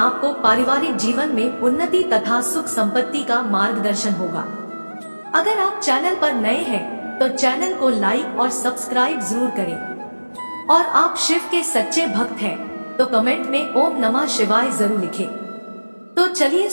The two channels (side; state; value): both; inverted; correlation -1.00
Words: पारिवारिक जीवन में उन्नति तथा सुख संपत्ति का मार्गदर्शन होगा। अगर आप चैनल पर नए हैं तो चैनल को लाइक और सब्सक्राइब जरूर करें और आप शिव के सच्चे भक्त हैं तो कमेंट में ओम नमः शिवाय जरूर लिखें। तो चलिए